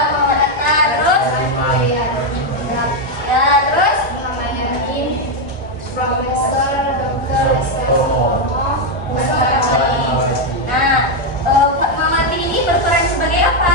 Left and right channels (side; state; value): both; normal; correlation 0.03